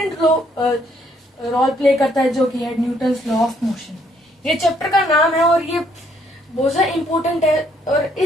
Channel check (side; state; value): both; normal; correlation 0.68